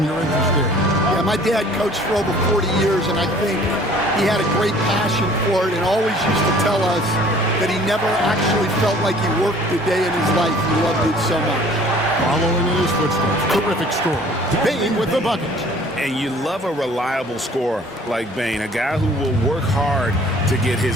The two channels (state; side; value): normal; both; correlation 0.52